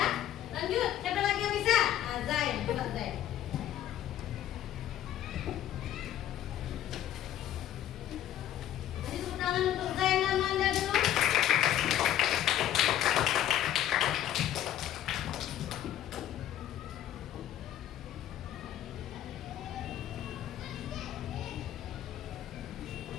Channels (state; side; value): quieter; right; 11.8 dB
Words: Lanjut, siapa lagi yang bisa? Zain, coba Zain. Kasih tepuk tangan untuk Zain dan Manda dulu.